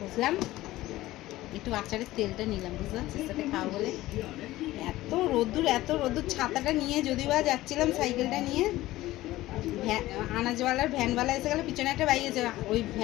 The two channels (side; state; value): right; quieter; 16.7 dB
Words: বসলাম, একটু আচারের তেলটা নিলাম, বুঝতে পারছি, সাথে খাওয়া বলে। এত রোদ্দুর, ছাতাটা নিয়ে যদিও বা যাচ্ছিলাম সাইকেলটা নিয়ে, আনাজওয়ালার ভ্যানওয়ালা এসে গেলো, পিছনে একটা বাইক আছে, ওই